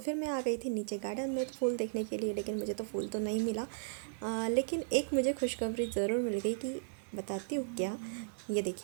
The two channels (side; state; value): left; silent; digital silence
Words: मैं आ गई थी नीचे गार्डन में फूल देखने के लिए, लेकिन मुझे तो फूल तो नहीं मिला। लेकिन एक मुझे खुशखबरी ज़रूर मिल गई कि बताती हूँ क्या। ये